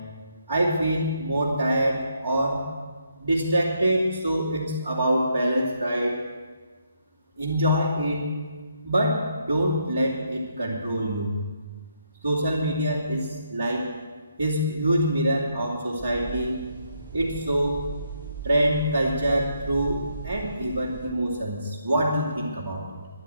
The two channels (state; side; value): inverted; both; correlation -0.75